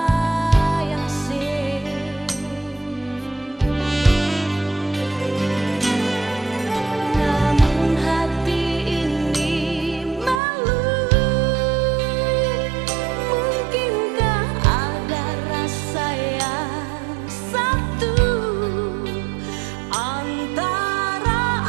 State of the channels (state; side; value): drops out; left; at 10.4 s